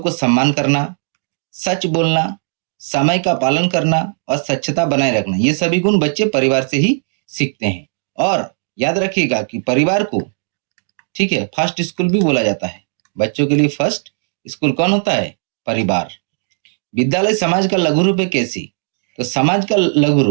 सम्मान करना, सच बोलना, समय का पालन करना और स्वच्छता बनाए रखना। ये सभी गुण बच्चे परिवार से ही सीखते हैं। और याद रखिएगा कि परिवार को, ठीक है, फर्स्ट स्कूल भी बोला जाता है। बच्चों के लिए फर्स्ट स्कूल कौन होता है? परिवार। विद्यालय समाज का लघु रूप है। कैसी? तो समाज का लघु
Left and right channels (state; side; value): silent; left; digital silence